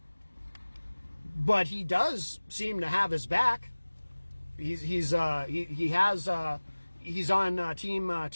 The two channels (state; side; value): inverted; both; correlation -1.00